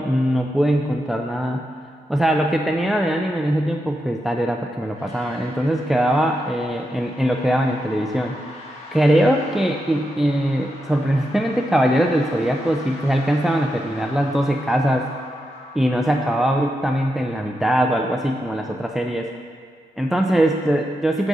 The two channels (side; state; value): both; normal; correlation 0.86